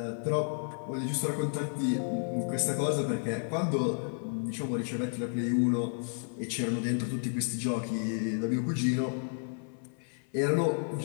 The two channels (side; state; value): right; silent; 57 dB below the other